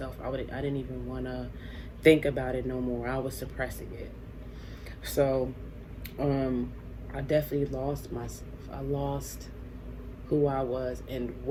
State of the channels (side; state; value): both; identical; correlation 1.00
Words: I didn't even want to think about it no more. I was suppressing it. So I definitely lost myself. I lost who I was and